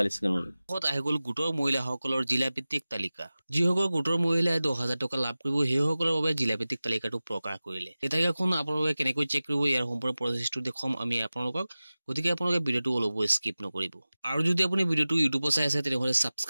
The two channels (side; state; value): both; inverted; correlation -0.97